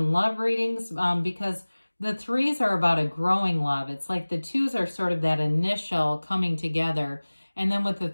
love readings because the threes are about a growing love. It's like the twos are sort of that initial coming together. And then with the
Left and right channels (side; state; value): both; inverted; correlation -1.00